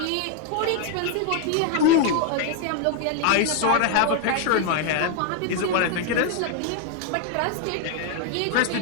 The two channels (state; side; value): different; both; correlation 0.00